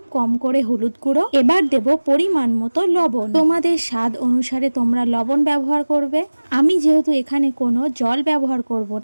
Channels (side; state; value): both; inverted; correlation -1.00